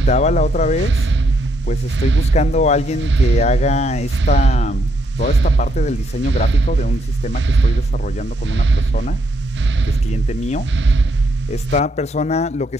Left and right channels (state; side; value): normal; both; correlation 0.75